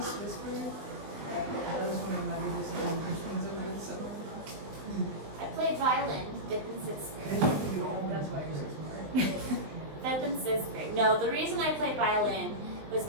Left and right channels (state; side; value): late; left; 20 ms